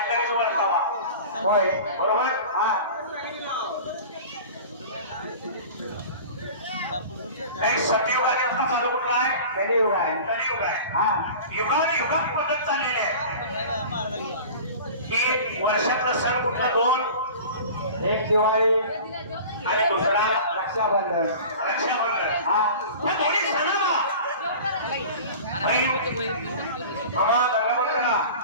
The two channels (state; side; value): inverted; both; correlation -0.38